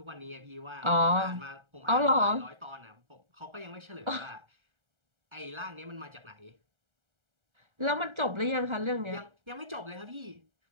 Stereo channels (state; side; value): late; left; 1.3 ms